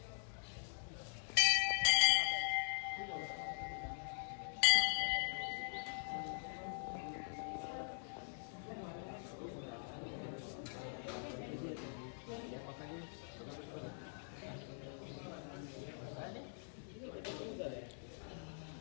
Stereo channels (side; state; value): right; silent; digital silence